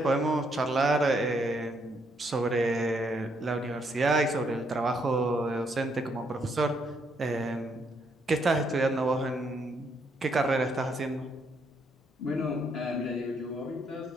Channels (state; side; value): normal; both; correlation 0.73